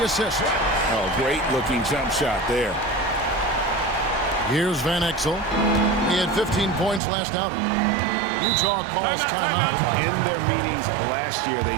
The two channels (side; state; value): left; drops out; at 7.0 s